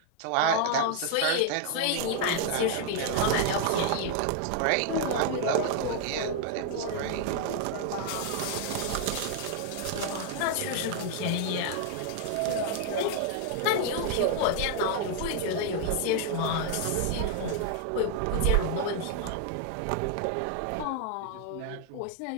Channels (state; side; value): different; both; correlation 0.00